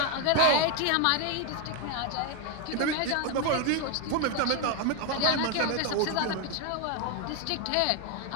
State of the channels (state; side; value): different; both; correlation 0.01